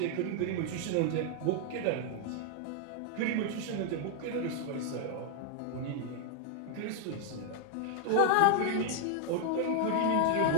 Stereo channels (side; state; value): both; different; correlation 0.00